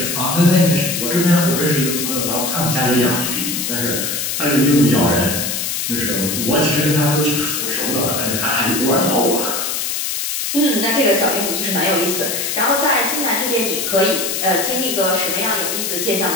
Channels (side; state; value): left; noise; hiss, 2 dB below the sound